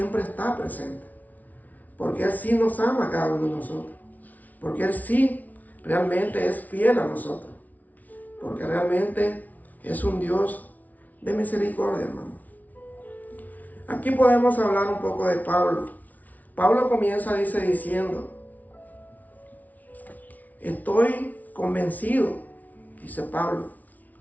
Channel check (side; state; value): right; late; 0.075 ms